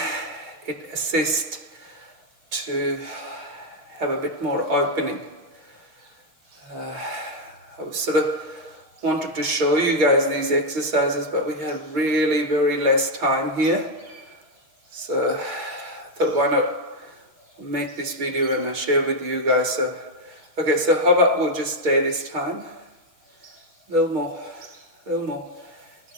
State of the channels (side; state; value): left; late; 6.5 ms